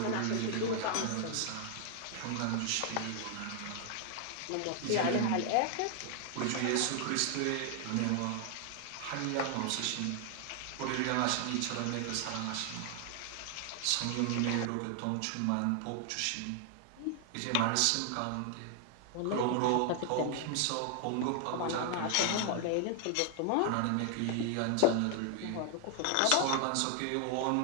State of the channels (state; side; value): different; both; correlation 0.00